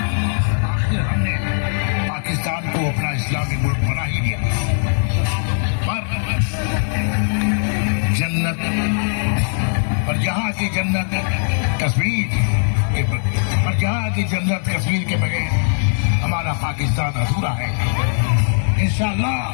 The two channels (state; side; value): silent; right; 66 dB below the other